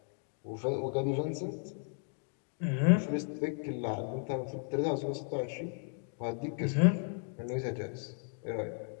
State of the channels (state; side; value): silent; right; 55 dB below the other